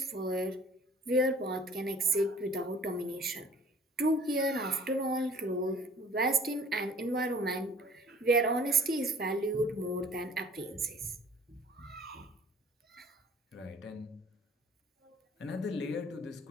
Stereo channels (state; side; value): normal; both; correlation 0.51